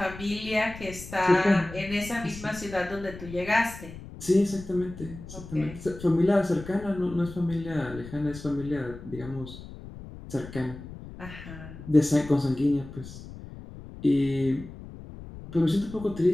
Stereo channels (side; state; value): left; noise; rumble, 14 dB below the sound